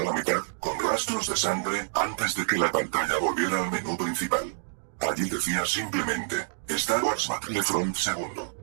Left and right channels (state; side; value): silent; left; digital silence